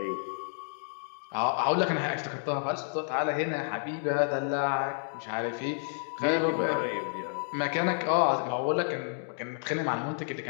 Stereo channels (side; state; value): right; silent; digital silence